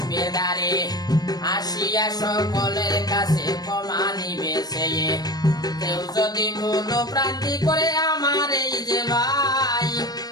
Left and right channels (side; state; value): right; late; 0.19 ms